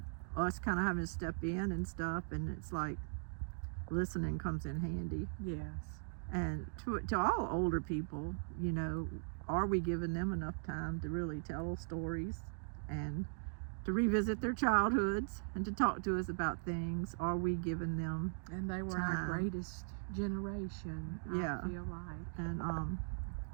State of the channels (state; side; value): silent; left; digital silence